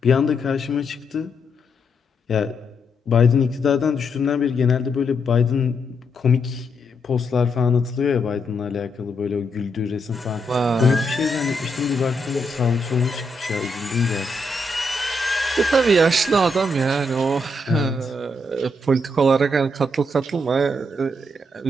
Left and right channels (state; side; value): normal; both; correlation 0.79